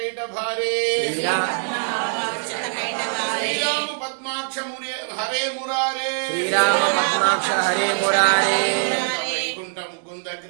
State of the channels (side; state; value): left; silent; digital silence